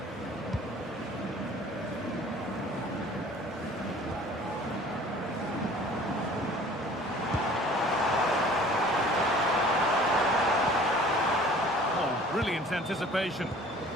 Oh, brilliant anticipation.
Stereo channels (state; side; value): normal; both; correlation 0.49